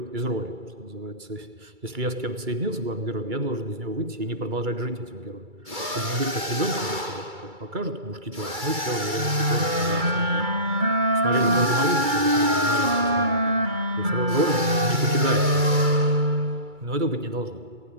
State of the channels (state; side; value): late; left; 2.3 ms